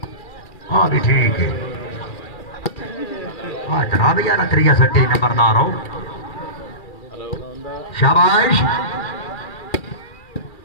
हाँ भी ठीक है हाँ जनाब यार त्रिया सट्टी नंबरदार हो शाबाश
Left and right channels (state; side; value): late; right; 2.4 ms